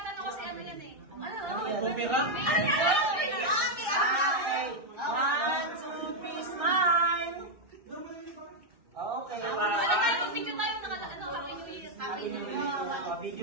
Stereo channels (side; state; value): left; late; 1.6 ms